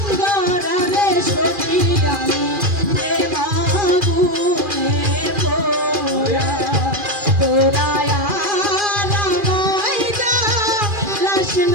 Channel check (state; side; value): late; left; 2.4 ms